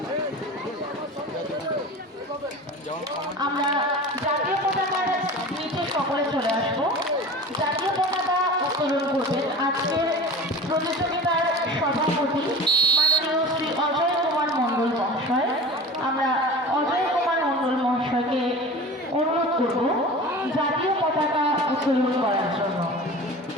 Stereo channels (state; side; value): normal; both; correlation 0.35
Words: আমরা জাতীয় পতাকার নিচে সকলে চলে আসবো। জাতীয় পতাকা উত্তোলন করবেন আজকের প্রতিযোগিতার সভাপতি মাননীয় শ্রী অজয় কুমার মণ্ডল মহাশয়। আমরা অজয় কুমার মণ্ডল মহাশয়কে অনুরোধ করব জাতীয় পতাকা উত্তোলন করার জন্য।